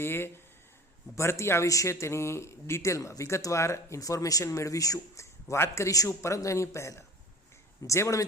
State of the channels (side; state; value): both; normal; correlation 0.40